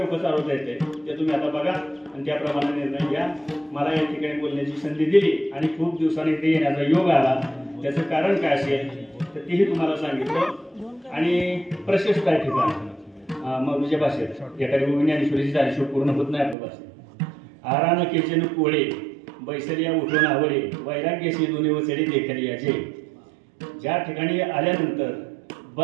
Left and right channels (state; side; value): drops out; left; at 16.6 s